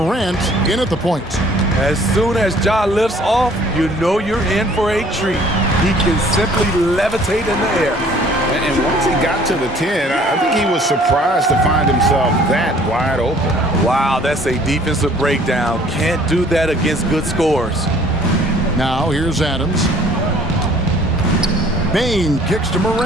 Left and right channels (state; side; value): normal; both; correlation 0.55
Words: in at the point. As soon as Ja lifts off, you know you're in for a treat. He can simply levitate in the air. And once he got to the 10, I think he was surprised to find himself that wide open. Wow, that's a defensive breakdown. Can't do that against good scores. Now here's Adams. Bain kicks to